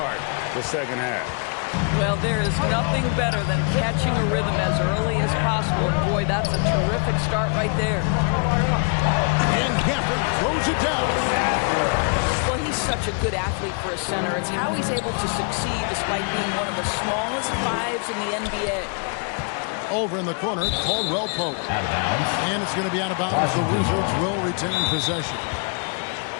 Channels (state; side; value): quieter; right; 38.6 dB